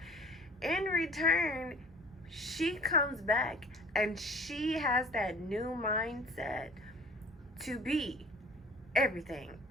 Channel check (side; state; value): both; normal; correlation 0.49